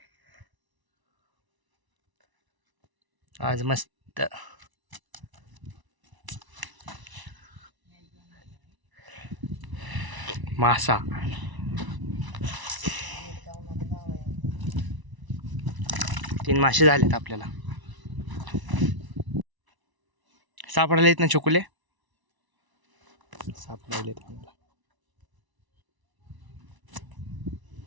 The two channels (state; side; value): late; left; 1.0 ms